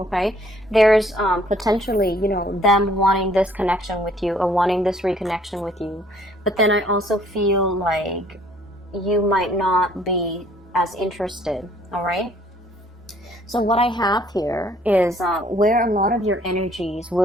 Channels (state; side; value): normal; both; correlation 0.60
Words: There's potentially, you know, them wanting this connection with you or wanting this reconnection with you. But then I also feel like you might not be as interested, all right? So what I have here is where a lot of your energies